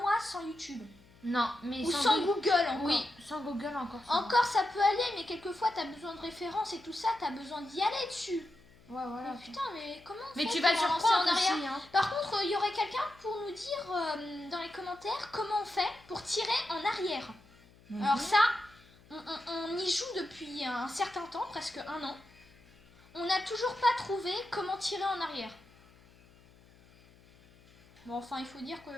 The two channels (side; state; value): left; noise; hum, 26 dB below the sound